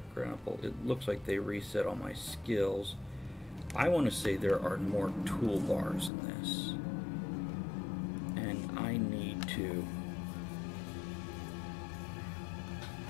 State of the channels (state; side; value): drops out; right; at 6.1 s